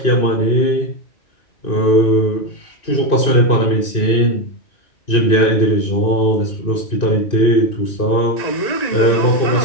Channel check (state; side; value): late; right; 2.6 ms